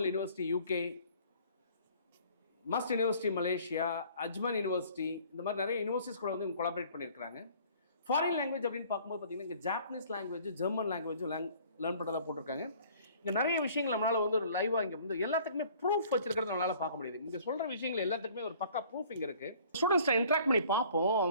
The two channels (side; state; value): both; inverted; correlation -0.54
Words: யூனிவர்சிட்டி யூகே, மஸ்ட் யூனிவர்சிட்டி மலேசியா, அஜ்மன் யூனிவர்சிட்டி, இந்த மாதிரி நிறைய யூனிவர்சிட்டிஸ் கூட வந்து இவங்க கொலாபரேட் பண்ணியிருக்கிறாங்க. ஃபாரின் லாங்குவேஜ் அப்படின்னு பார்க்கும்போது பார்த்தீங்கன்னா இங்கே ஜாப்பனீஸ் லாங்குவேஜ், ஜெர்மன் லாங்குவேஜும் லேர்ன் பண்ணுறதா போட்டிருக்காங்க. இங்கே நிறைய விஷயங்கள் நம்மளால் வந்து ஒரு லைவாக இங்கே வந்து எல்லாத்துக்குமே ப்ரூஃப் வச்சிருக்கிறது நம்மளால் பார்க்க முடியுது. இங்கே சொல்கிற விஷயங்கள் எல்லாத்துக்குமே ஒரு பக்கா ப்ரூஃப் இங்கே இருக்குது. ஸ்டூடெண்ட்ஸ்ட்டை இன்ட்ராக்ட் பண்ணி பார்ப்போம்.